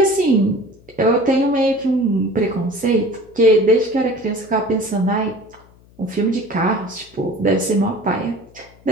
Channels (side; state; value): left; noise; hum, 27 dB below the sound